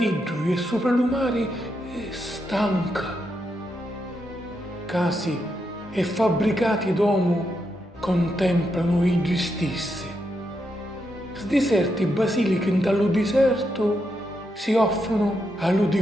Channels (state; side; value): normal; both; correlation 0.82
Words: lui e sopra l'umare, è stanca. Casi e fabbricati d'uomo contemplano i stessi. Sdiserti basiliche dallo deserto si offrono